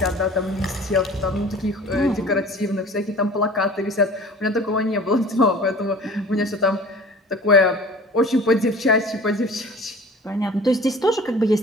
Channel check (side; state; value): both; normal; correlation 0.44